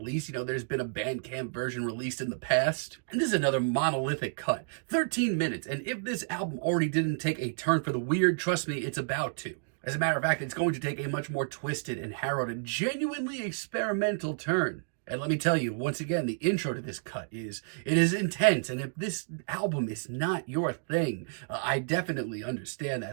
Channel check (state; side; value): silent; left; digital silence